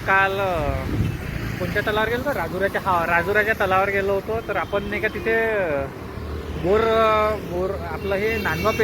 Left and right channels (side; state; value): both; identical; correlation 1.00